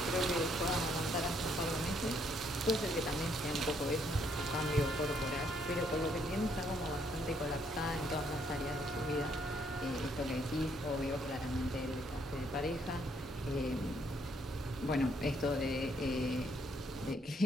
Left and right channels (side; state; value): both; normal; correlation 0.70